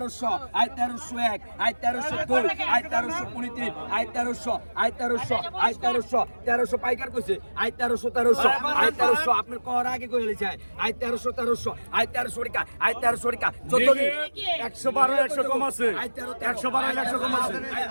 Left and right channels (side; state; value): both; inverted; correlation -1.00